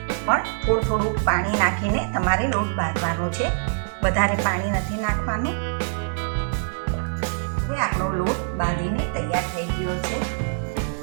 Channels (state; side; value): silent; left; 62 dB below the other